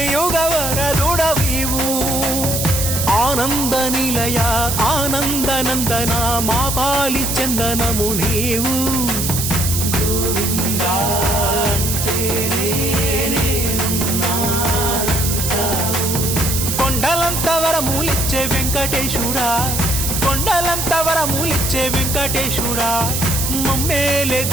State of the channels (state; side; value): noise; right; hiss, 1 dB below the sound